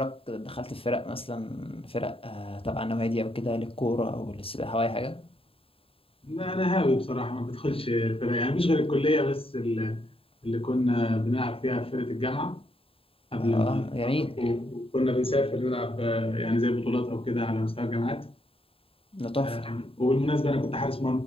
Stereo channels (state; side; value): late; right; 0.27 ms